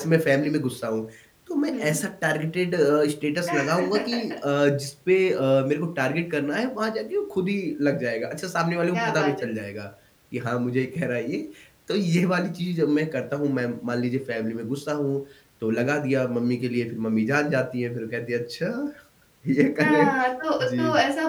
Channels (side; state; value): both; identical; correlation 1.00